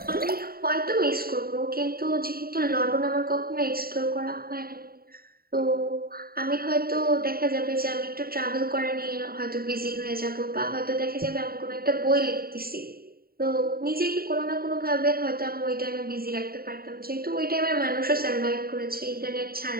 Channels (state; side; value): late; left; 0.43 ms